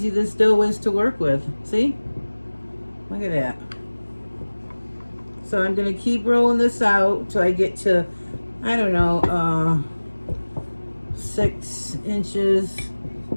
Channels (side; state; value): both; inverted; correlation -1.00